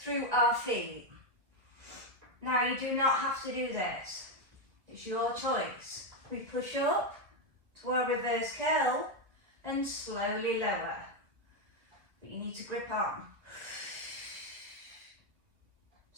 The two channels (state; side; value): late; left; 1.9 ms